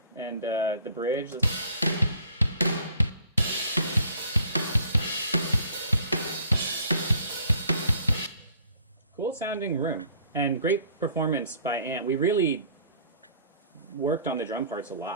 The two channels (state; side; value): inverted; both; correlation -0.55